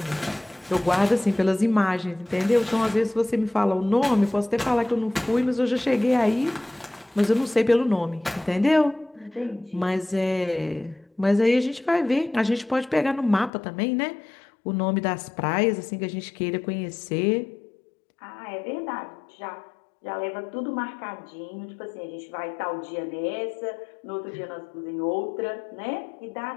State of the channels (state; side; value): drops out; right; at 13.5 s